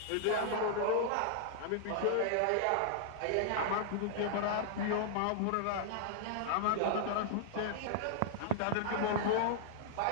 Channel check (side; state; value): both; different; correlation -0.01